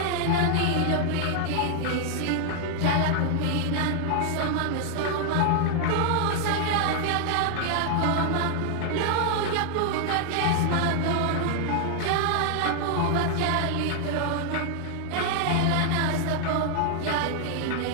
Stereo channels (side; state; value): both; different; correlation 0.00